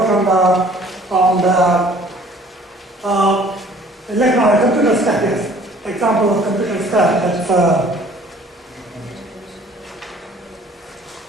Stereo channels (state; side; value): normal; both; correlation 0.53